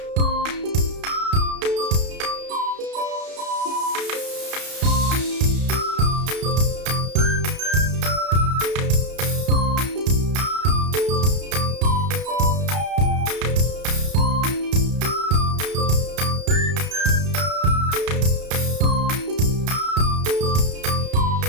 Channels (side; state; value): left; late; 32 ms